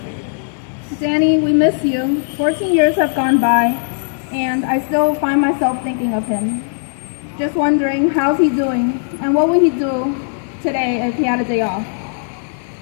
Danny, we miss you. 14 years have gone by, and I still find myself thinking of him. Just wondering, how's he doing, and what would he do today if he had a day off?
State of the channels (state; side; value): silent; right; digital silence